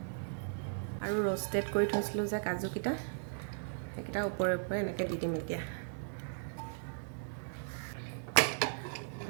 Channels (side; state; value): left; silent; digital silence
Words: আৰু ৰ'ষ্টেড কৰি থৈছিলোঁ যে কাজুকেইটা, সেইকেইটা ওপৰে ওপৰে এনেকৈ দি দিম। এতিয়া